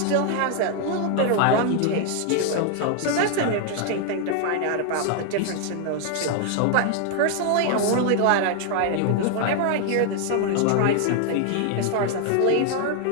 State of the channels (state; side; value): different; both; correlation 0.00